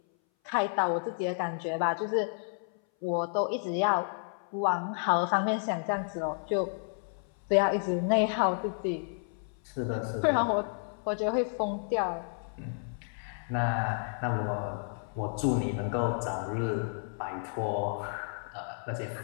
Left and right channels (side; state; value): right; silent; 57 dB below the other